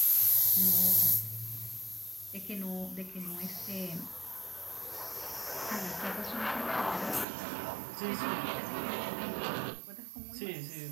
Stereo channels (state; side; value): drops out; left; at 7.2 s